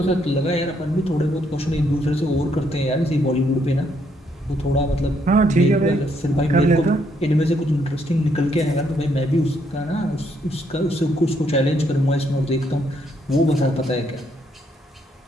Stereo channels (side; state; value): both; normal; correlation 0.73